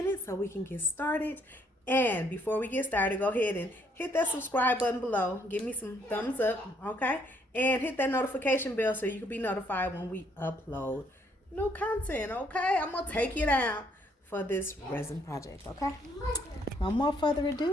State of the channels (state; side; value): normal; both; correlation 0.68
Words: so we can get started. And before we get started, go ahead and hit that subscribe button below. Give me some thumbs up, okay? And hit that notification bell so you can be notified when we upload new content, okay? I'm going to take you down for this resin project, okay? No more further